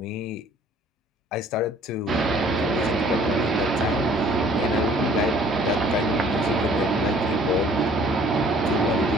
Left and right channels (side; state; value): both; normal; correlation 0.56